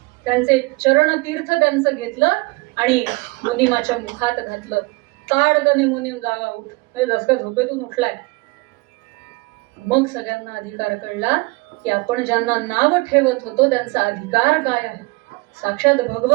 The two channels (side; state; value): left; quieter; 25.6 dB